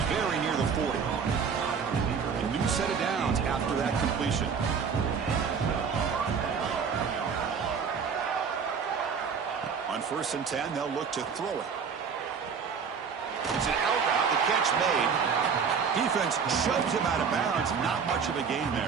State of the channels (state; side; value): quieter; left; 6.2 dB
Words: very near the 40. A new set of downs after that completion. On 1st and 10, they'll look to throw it. It's an out route, the catch made. Defense shoves him out of bounds. Not much of a gain